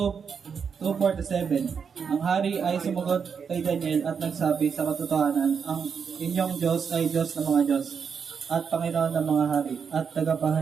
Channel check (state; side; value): quieter; left; 6.4 dB